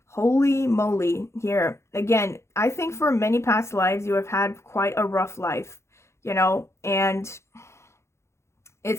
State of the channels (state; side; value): late; right; 0.13 ms